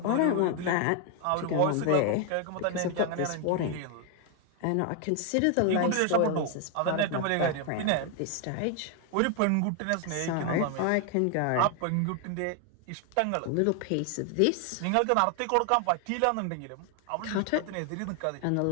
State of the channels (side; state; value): both; different; correlation 0.00